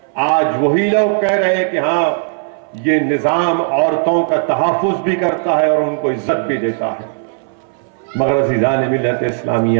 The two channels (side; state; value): left; silent; 62 dB below the other